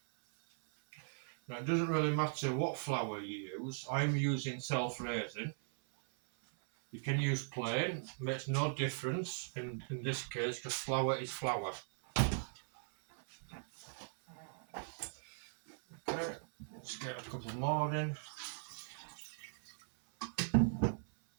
Now it doesn't really matter what flour you use. I'm using self-raising. You can use plain, makes no difference in this case because flour is flour. Okay, let's get a couple more in.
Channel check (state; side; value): silent; left; 52 dB below the other